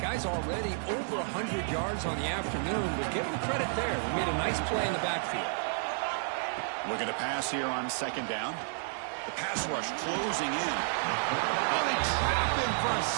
Guy's already over 100 yards on the afternoon, but give him credit there. He made a nice play in the backfield. Looking to pass here on second down. The pass rush closing in. Oh, they trap him for a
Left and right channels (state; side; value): silent; left; digital silence